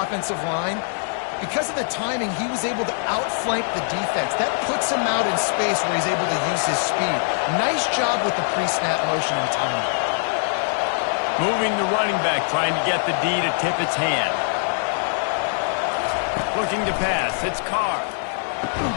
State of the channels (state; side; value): silent; right; 64 dB below the other